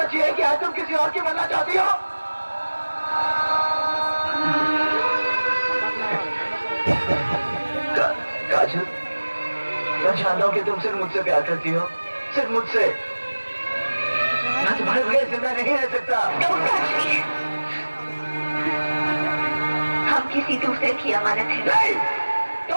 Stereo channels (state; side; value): inverted; both; correlation -1.00